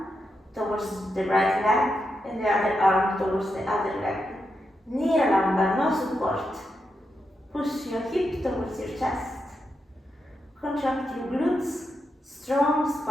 towards the right leg and the other arm towards the other leg. Niralamba, no support. Push your hip towards your chest. Contract your glutes, strong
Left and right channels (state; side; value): normal; both; correlation 0.85